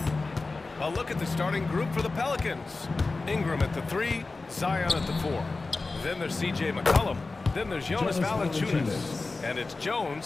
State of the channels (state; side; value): quieter; right; 3.6 dB